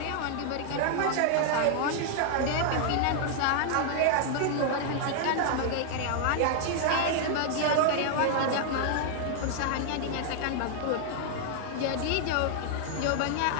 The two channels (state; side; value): different; both; correlation 0.00